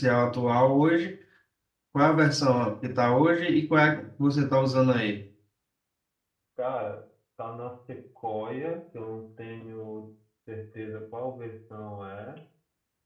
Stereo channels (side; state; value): both; identical; correlation 1.00